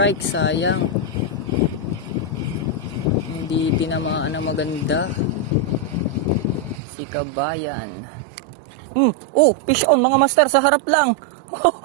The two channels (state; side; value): drops out; left; at 6.8 s